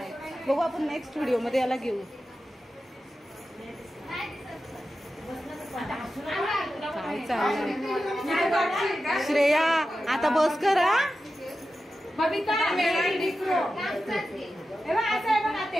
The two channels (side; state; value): both; normal; correlation 0.92